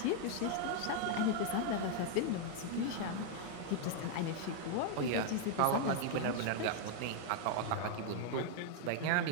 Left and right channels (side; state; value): both; different; correlation 0.00